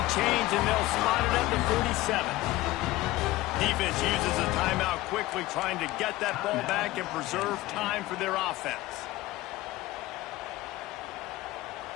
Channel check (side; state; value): right; quieter; 17.9 dB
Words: chains, and they'll spot it at the 47. Defense uses a timeout quickly, trying to get that ball back and preserve time for their offense.